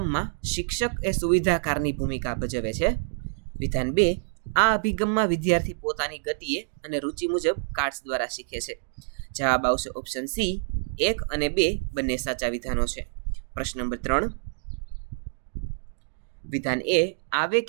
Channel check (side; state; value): left; silent; digital silence